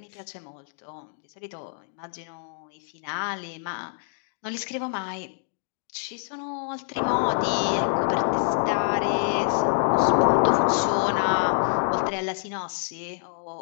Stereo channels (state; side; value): silent; right; digital silence